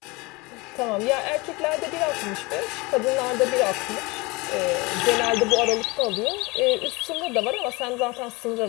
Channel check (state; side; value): quieter; right; 24.9 dB